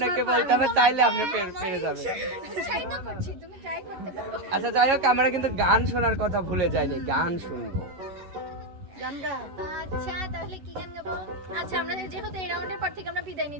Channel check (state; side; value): late; left; 11 ms